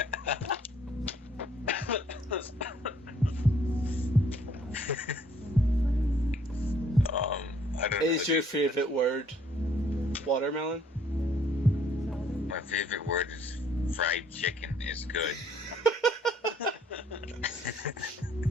I don't know. Is your favorite word watermelon? My favorite word is fried chicken is good.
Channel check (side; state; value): both; normal; correlation 0.62